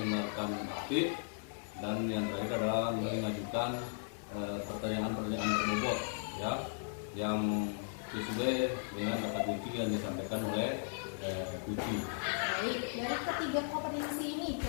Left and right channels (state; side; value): silent; right; digital silence